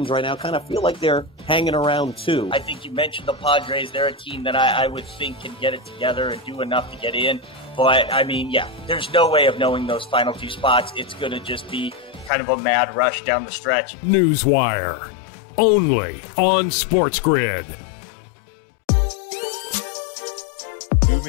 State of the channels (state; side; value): drops out; right; at 12.3 s